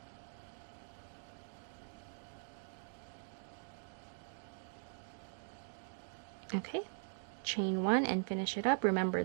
Okay, chain 1 and finish it up. Remember,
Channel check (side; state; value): left; silent; digital silence